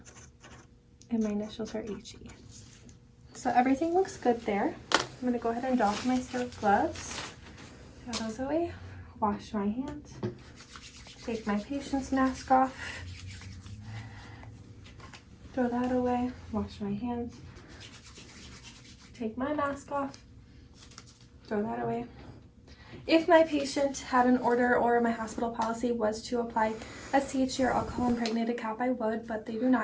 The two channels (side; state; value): both; identical; correlation 1.00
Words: and my initials are HE. So everything looks good there. I'm gonna go ahead and doff my sterile gloves, throw those away, wash my hands, take my patient's mask off, throw that away, wash my hands, take my mask off, throw that away. If my patient had an order or my hospital policy was to apply a CHG or alcohol impregnated cap, I would, but they do